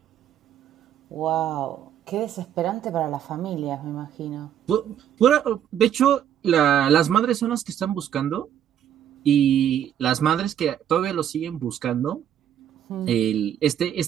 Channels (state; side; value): quieter; left; 10.0 dB